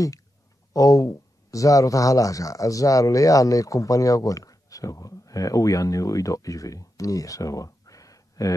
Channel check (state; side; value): normal; both; correlation 0.87